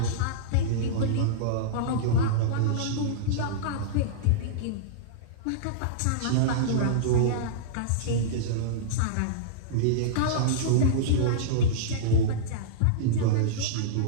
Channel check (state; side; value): different; both; correlation -0.03